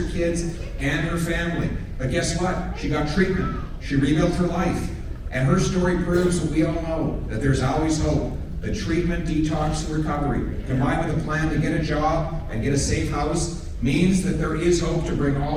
kids and her family. But guess what? She got treatment. She rebuilt her life. And her story proves what we all know, that there's always hope. The treatment, detox, and recovery, combined with a plan to get a job and get a safe house, means that there is hope to bring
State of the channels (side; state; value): both; identical; correlation 1.00